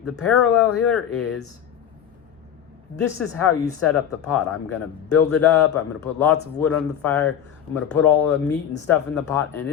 parallel here is, this is how you set up the pot. I'm going to build it up. I'm going to put lots of wood on the fire. I'm going to put all the meat and stuff in the pot, and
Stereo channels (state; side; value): quieter; right; 9.2 dB